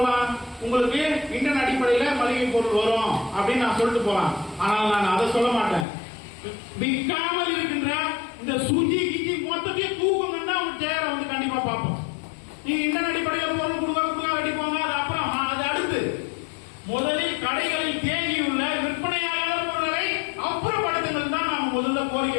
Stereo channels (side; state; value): right; drops out; at 5.9 s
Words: உங்களுக்கு இன்டர்நெட் அடிப்படையில மளிகை பொருள் வரும் அப்படின்னு நான் சொல்லிட்டு போலாம். ஆனால் நான் அதை சொல்ல மாட்டேன். விற்காமல் இருக்கின்ற இந்த சுஜி கிஜி மொத்தத்தையும் தூக்கணும்னா அவங்க சேரை வந்து கண்டிப்பா பார்ப்போம். நீங்க இன்டர்நெட் அடிப்படையில் பொருள் கொடுக்க வெட்டி போங்க, அது அப்புறம் அது அடுத்து. முதலில் கடைகளில் தேங்கியுள்ள விற்பனையாளர் பொருட்களை அப்புறப்படுத்துங்கள் தான்